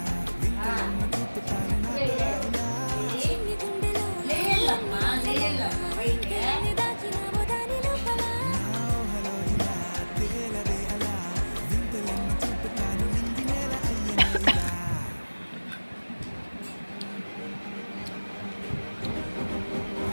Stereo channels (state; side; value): inverted; both; correlation -1.00